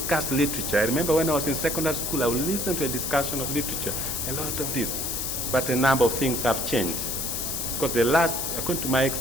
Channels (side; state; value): left; noise; hiss, 2 dB below the sound